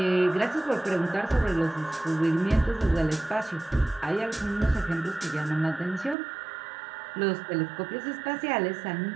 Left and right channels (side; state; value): left; drops out; at 6.2 s